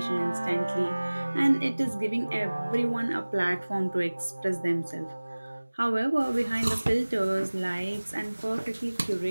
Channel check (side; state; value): both; inverted; correlation -1.00